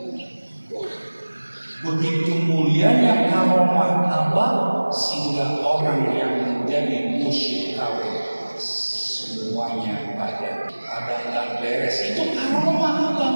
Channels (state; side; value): inverted; both; correlation -1.00